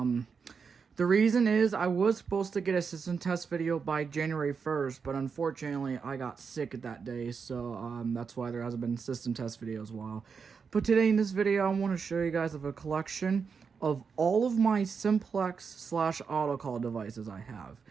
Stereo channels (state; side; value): quieter; left; 5.8 dB